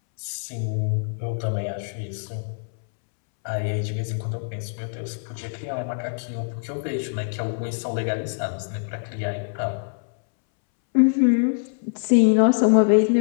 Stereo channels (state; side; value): silent; right; 62 dB below the other